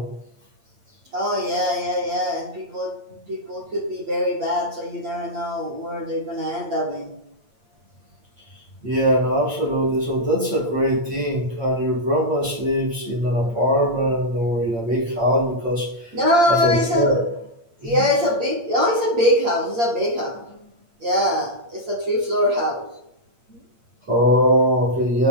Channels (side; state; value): left; late; 8.7 ms